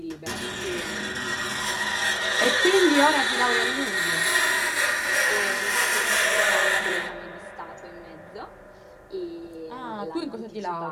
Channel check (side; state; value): both; identical; correlation 1.00